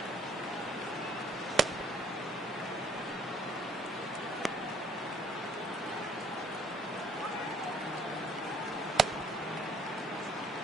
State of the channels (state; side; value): normal; both; correlation 0.63